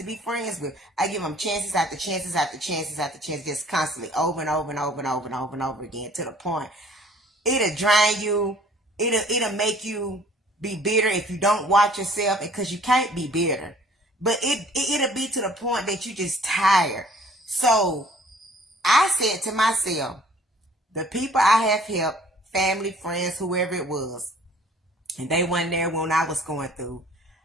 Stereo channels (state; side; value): normal; both; correlation 0.55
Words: be friends with. I give them chances after chances after chances after chances, just constantly, over and over and over and over and over and over again, to the point it'll drain you. It'll make you be bitter if you don't watch yourself, because you can't be bitter. But it'll be to the point that you just tired. So I said to myself, the people I have helped, family, friends, whoever it was, and they weren't there when I was going through,